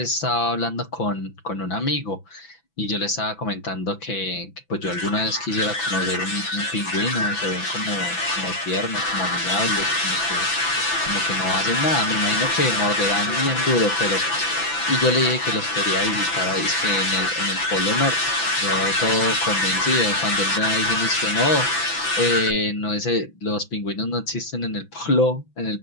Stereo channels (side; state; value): right; late; 6.0 ms